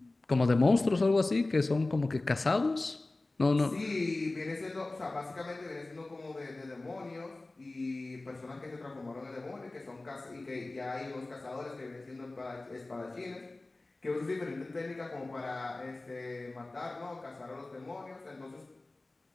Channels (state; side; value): quieter; right; 3.0 dB